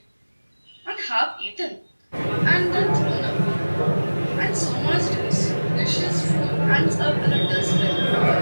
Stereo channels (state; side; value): inverted; both; correlation -1.00